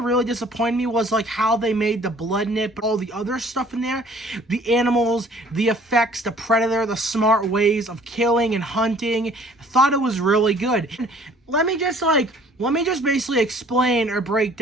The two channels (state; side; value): normal; both; correlation 0.54